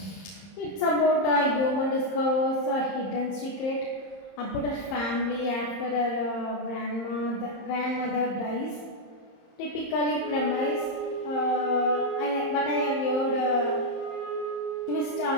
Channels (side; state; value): right; late; 30 ms